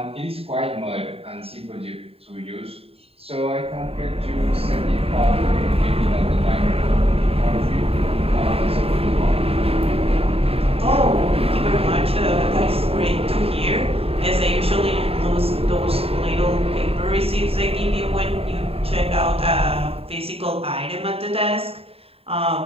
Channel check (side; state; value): left; late; 0.28 ms